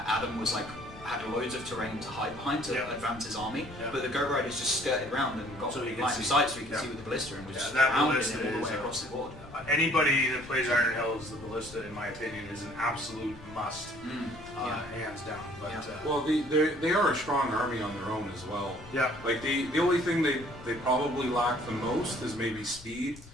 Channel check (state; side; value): noise; left; rumble, 20 dB below the sound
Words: Adam was like had loads of terrain to hide behind to Yeah. advance his army, Yeah. but the Goat Riders just skirted around and got So he could line of see. sight so he could Yeah. see with the ballista and was Yeah, just that pounding ballista him all the is way a- across the board. Anybody that plays Iron Hills, the ballista, in my opinion, is an absolute must, hands down. But Yeah. Well, they are a strong army on their own as well. yeah, Like the only thing they probably lack the most is maybe speed,